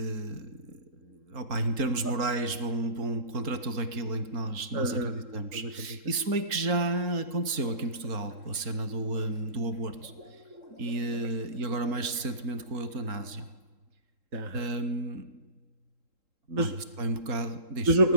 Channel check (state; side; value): late; left; 3.7 ms